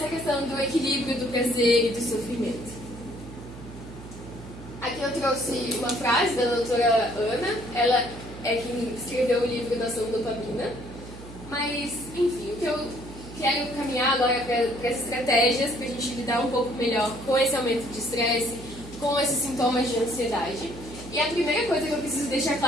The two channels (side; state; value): right; noise; hum, 15 dB below the sound